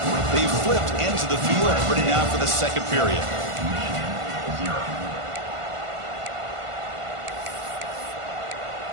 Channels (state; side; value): late; left; 1.5 ms